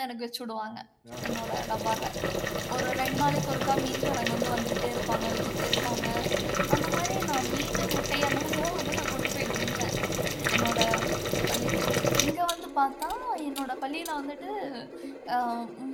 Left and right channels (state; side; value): identical; both; correlation 1.00